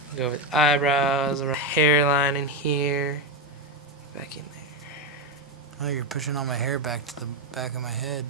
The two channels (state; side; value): normal; both; correlation 0.10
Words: Go with eyebrows, around hairline in here. Back in there. Oh, you're pushing all my hair back to the back of my head,